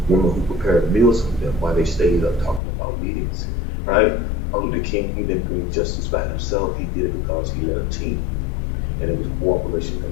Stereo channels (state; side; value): drops out; right; at 2.6 s